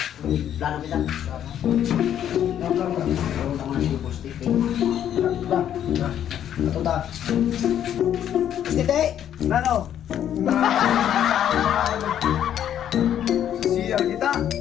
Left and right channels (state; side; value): quieter; right; 10.2 dB